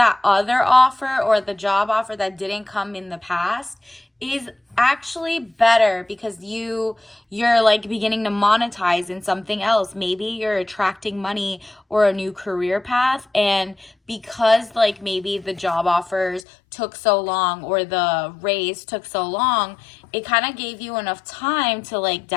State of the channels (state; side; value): drops out; right; at 16.4 s